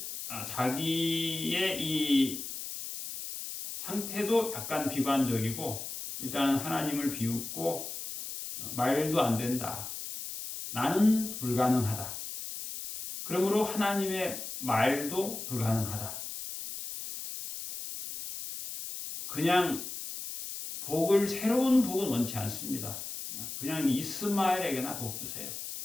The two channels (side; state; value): left; noise; hiss, 7 dB below the sound